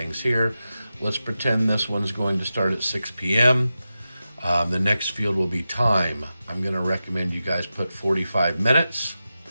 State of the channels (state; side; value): inverted; both; correlation -0.92